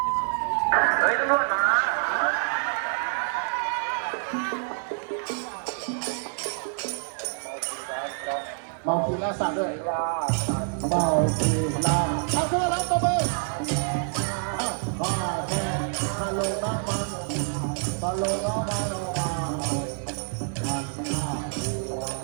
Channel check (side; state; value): left; silent; 60 dB below the other